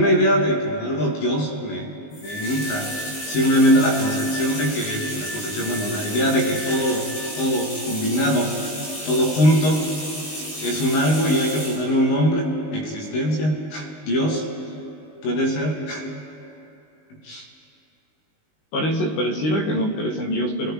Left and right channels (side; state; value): right; late; 19 ms